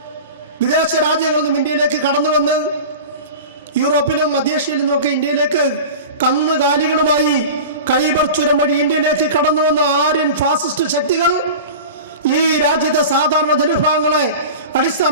വിദേശ രാജ്യങ്ങളൊന്നും ഇന്ത്യയിലേക്ക് കടന്നു വന്ന് യൂറോപ്പിലും മധ്യേഷ്യയിലും നിന്നൊക്കെ ഇന്ത്യയിലേക്ക് കന്നുകാലികളുമായി ഖൈബർ ചുരം വഴി ഇന്ത്യയിലേക്ക് കടന്നു വന്ന ആര്യൻ ഫാസിസ്റ്റ് ശക്തികൾ ഈ രാജ്യത്തെ സാധാരണ ജനവിഭാഗങ്ങളെ, അടിസ്ഥാന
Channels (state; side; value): inverted; both; correlation -0.33